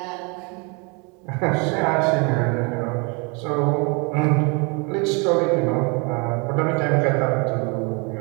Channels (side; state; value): left; quieter; 31.7 dB